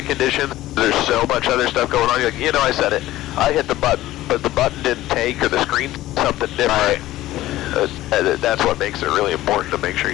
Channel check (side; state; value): right; quieter; 15.6 dB